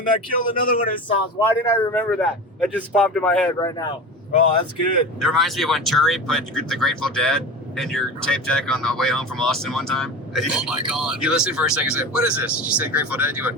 I killed another one of his songs. Why didn't I remember that? That just popped in my head right now. Oh, that's good. It reminds me of when Turi put the Grateful Dead in your tape deck on the way home from Austin one time. Oh my God. You listened for a second and said, what is this? She said Grateful Dead. You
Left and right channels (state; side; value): normal; both; correlation 0.30